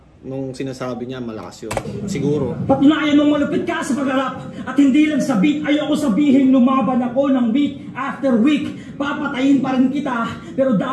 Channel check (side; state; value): both; identical; correlation 1.00